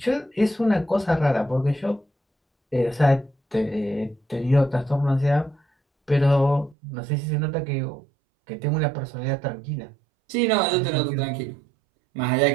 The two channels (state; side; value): drops out; left; at 6.8 s